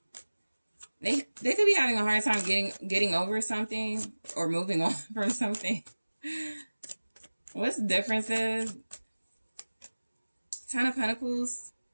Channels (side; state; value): both; inverted; correlation -1.00